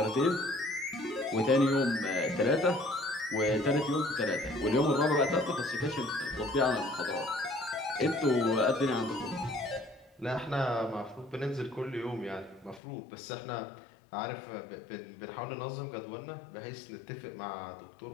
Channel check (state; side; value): drops out; right; at 12.8 s